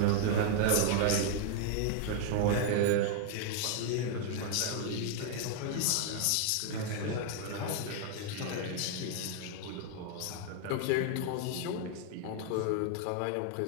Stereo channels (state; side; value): different; both; correlation 0.00